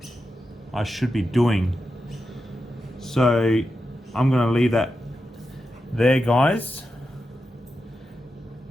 I should be doing. So I'm gonna leave that there, guys.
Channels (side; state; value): both; normal; correlation 0.89